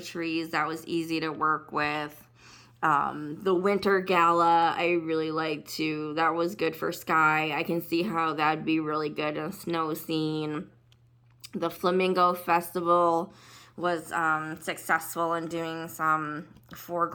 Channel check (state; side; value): identical; both; correlation 1.00